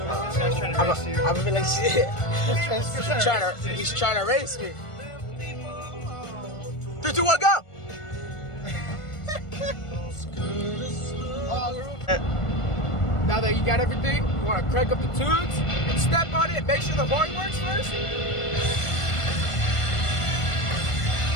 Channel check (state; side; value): late; right; 1.5 ms